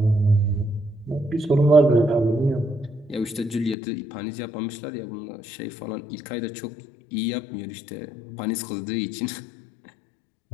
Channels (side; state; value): right; drops out; at 3.8 s